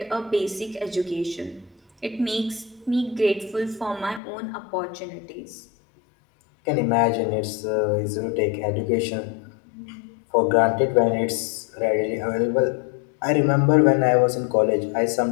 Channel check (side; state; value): right; drops out; at 4.2 s